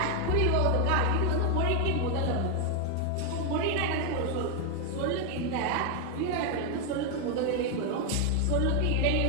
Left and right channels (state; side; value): different; both; correlation 0.01